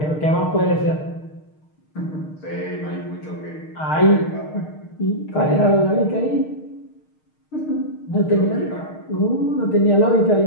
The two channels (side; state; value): right; late; 6.5 ms